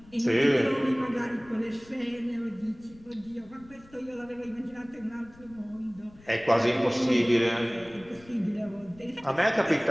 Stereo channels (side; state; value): left; noise; rumble, 24 dB below the sound